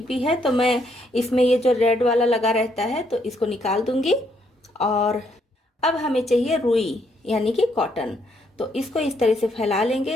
है, तो मैं इसमें ये जो रेड वाला लगा रहता है तो इसको निकाल दूंगी। और अब हमें चाहिए रुई यानी कि कॉटन। तो इसको इस तरह से फैला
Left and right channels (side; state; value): both; normal; correlation 0.72